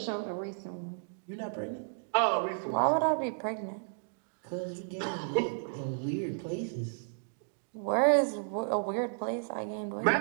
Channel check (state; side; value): silent; left; digital silence